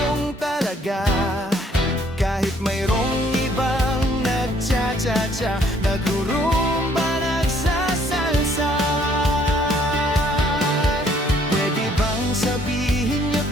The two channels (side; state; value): both; normal; correlation 0.63